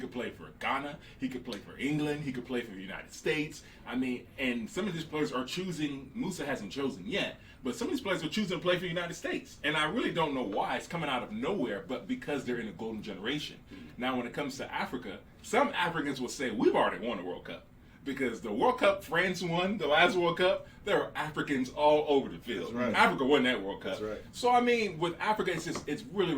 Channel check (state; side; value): identical; both; correlation 1.00